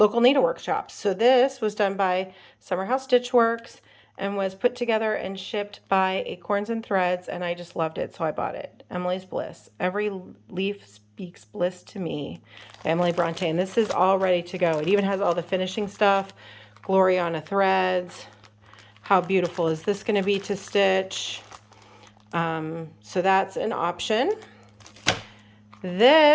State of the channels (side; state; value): both; identical; correlation 1.00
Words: needlework shops. So this was done by Summer House Stitch Works, and was put together and shipped by Acorns and Threads, and I just loved it, so I bought it. Emily's Bliss. Every leaf speaks bliss to me. By Emily Bronte. And this is all ready to go. It even has all the finishing stuff. Gloriana threads. How beautiful is this going to be to stitch? So that's an option.